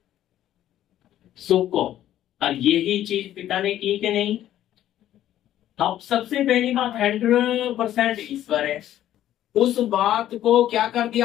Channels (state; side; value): quieter; right; 12.3 dB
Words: सुख को। और यही चीज पिता ने की कि नहीं? अब सबसे पहली बात 100% ईश्वर है। उस बात को क्या कर